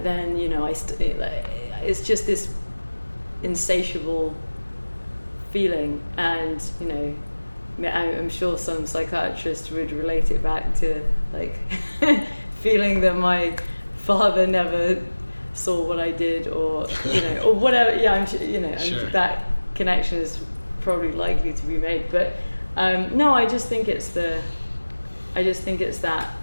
then, you know, it's just this insatiable feeling. And, you know, I'm sure some psychiatrist would relate it back to like feeling that my father never saw what I did, or, you know, or whatever. I'm sure, you know, sure. That connection is probably likely to be made. But no, I just think it's that,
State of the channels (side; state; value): both; inverted; correlation -1.00